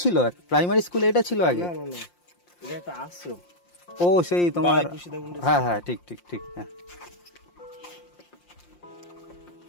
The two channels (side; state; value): right; late; 5.7 ms